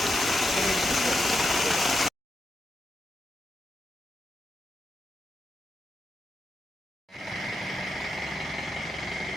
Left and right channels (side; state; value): both; normal; correlation 0.85